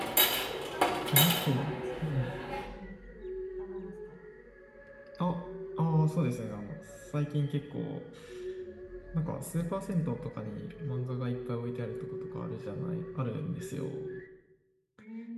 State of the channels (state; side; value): identical; both; correlation 1.00